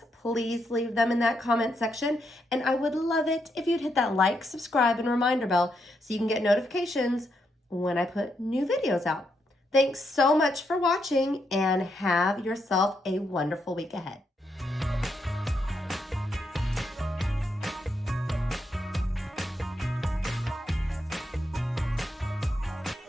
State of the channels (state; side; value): normal; both; correlation 0.80